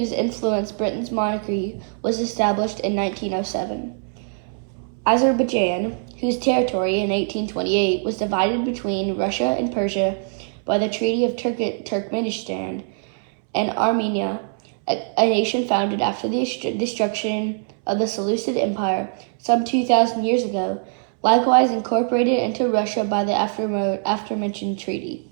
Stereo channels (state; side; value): silent; left; 64 dB below the other